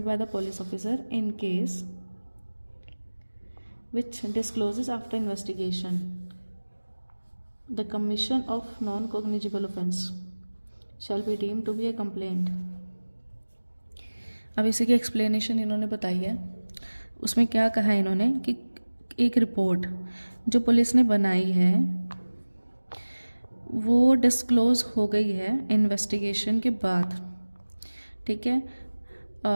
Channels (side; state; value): both; inverted; correlation -1.00